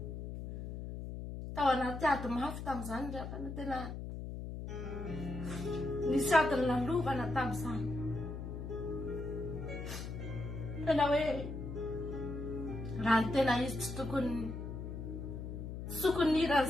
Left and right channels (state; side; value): noise; left; hum, 7 dB below the sound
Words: Tao anaty ady mafy tamin'izany ry havana, tena nisy adiny nalovana tamin'izany. Tena hoe raha ny tena izy tsy tokony